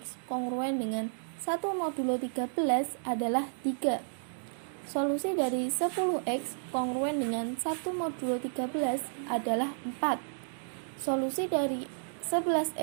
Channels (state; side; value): silent; left; digital silence